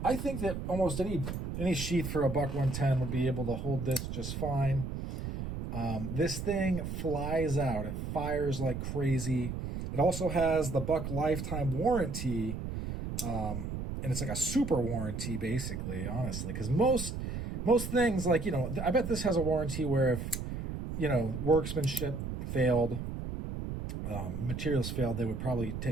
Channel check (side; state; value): right; noise; rumble, 5 dB below the sound